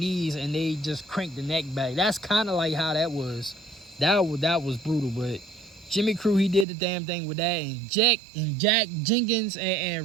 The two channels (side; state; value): left; drops out; at 6.7 s